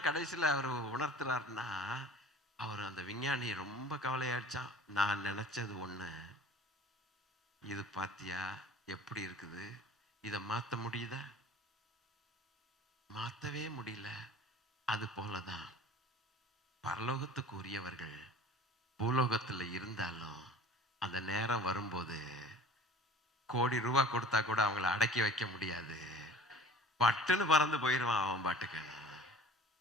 கடைசியில் அவர் உணர்த்துறாருன்னா, அவர் அந்த விஞ்ஞானி ரொம்ப கவலையாயிடுச்சான். நான் நினைச்சது ஒண்ணு, இது பாத்தியா எப்படி இருக்குது, இதை மாத்த முடியுதா? மாத்தவே முடியல. அது போலதான் பரலோகத்துக்கு உரியவர்கள் பூலோகத்துல இருந்தாலும் அந்த நேரம் வரும்போது கோடி ரூபாய் கொடுத்தா கூட அவங்கள அடக்கி வைக்க முடியாது. பட்டுன்னு பறந்து போயிடுவான் அவன் பாட்டுக்கு.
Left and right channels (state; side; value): normal; both; correlation 0.45